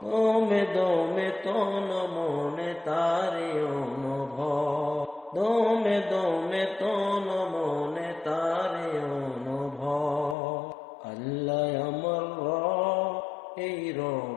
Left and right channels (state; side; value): drops out; right; at 10.4 s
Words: দমে দমে তন মনে তারি অনুভব, দমে দমে তন মনে তারি অনুভব। আল্লাহ আমার রব, এই